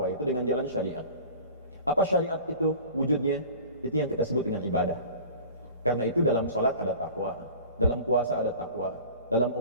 itu dengan jalan syariat. Apa syariat itu wujudnya? Itu yang kita sebut dengan ibadah. Karena itu dalam sholat ada takwa, dalam puasa ada takwa, dalam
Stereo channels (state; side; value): inverted; both; correlation -0.41